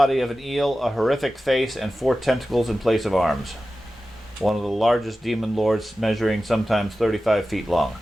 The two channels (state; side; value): normal; both; correlation 0.94